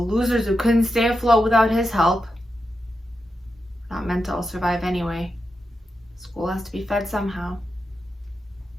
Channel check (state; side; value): normal; both; correlation 0.87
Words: who couldn't stay afloat without his help. Not meant to all survive anyway. School has to be fed somehow.